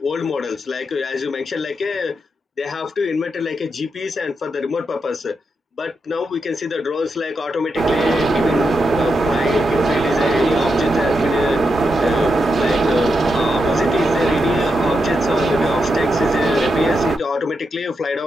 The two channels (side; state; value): both; normal; correlation 0.85